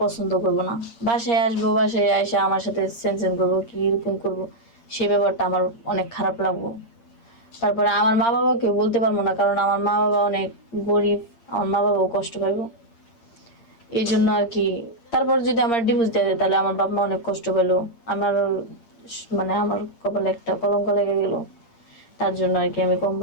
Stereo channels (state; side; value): late; right; 8.6 ms